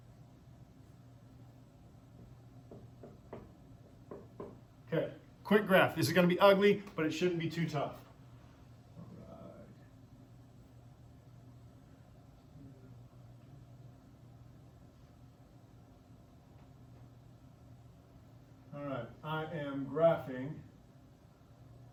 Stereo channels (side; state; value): both; identical; correlation 1.00